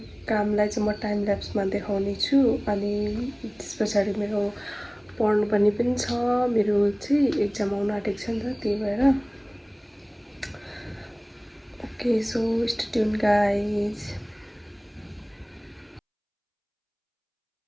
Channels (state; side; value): identical; both; correlation 1.00